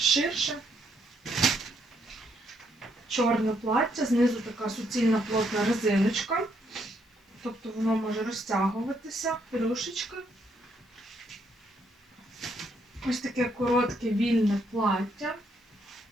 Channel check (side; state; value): both; normal; correlation 0.73